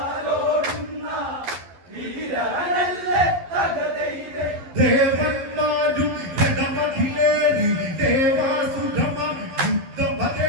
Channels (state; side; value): late; left; 12 ms